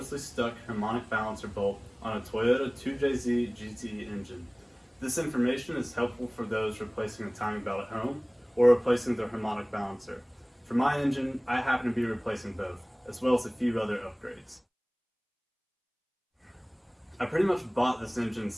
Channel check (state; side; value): identical; both; correlation 1.00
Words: stuck harmonic balancer bolt on a Toyota 2JZGTE engine. This information is helpful for those replacing a timing belt at home or replacing their harmonic balancer. For my engine, I happen to be replacing both, as well as a few other upgrades. I pretty much bought this engine